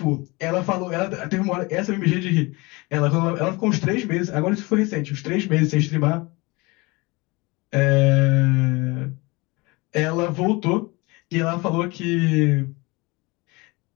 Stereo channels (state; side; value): quieter; right; 24.9 dB